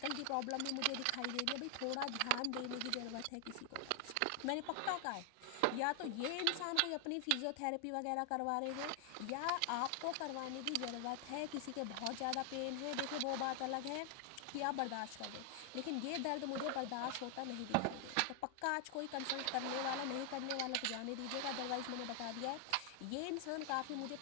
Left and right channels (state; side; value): different; both; correlation 0.00